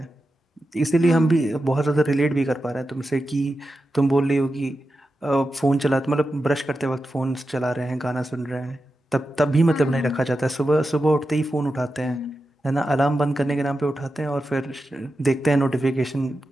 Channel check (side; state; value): both; normal; correlation 0.91